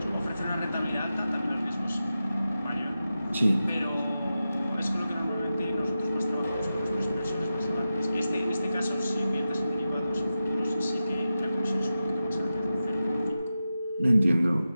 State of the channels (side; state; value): both; inverted; correlation -0.92